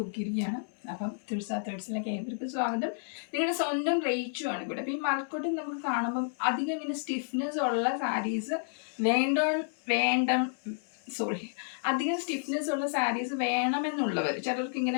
അപ്പം തുൾസാ തേർഡ്സിലേക്ക് ഏവർക്ക് സ്വാഗതം. നിങ്ങളുടെ സ്വന്തം റേച്ചു ആണ് ഇവിടെ. അപ്പം ഈ മഴക്കോട്ടൻ നമുക്ക് കാണുമ്പം അധികം ഇങ്ങനെ സ്റ്റിഫ്നെസ് ഉള്ള സാരീസ് അധികം സ്റ്റിഫ്നെസ് ഉള്ള സാരീസ് വേണമെന്നുള്ളവർ, ചിലർക്ക്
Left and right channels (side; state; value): right; silent; digital silence